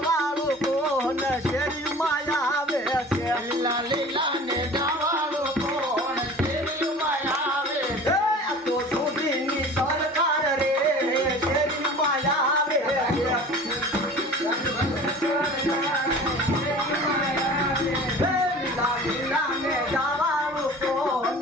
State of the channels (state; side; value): normal; both; correlation 0.41